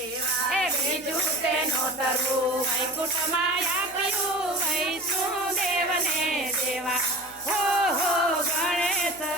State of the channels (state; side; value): noise; left; hum, 26 dB below the sound